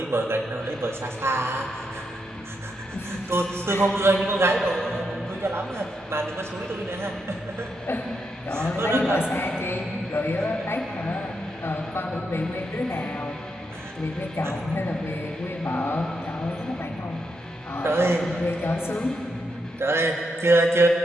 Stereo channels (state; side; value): normal; both; correlation 0.82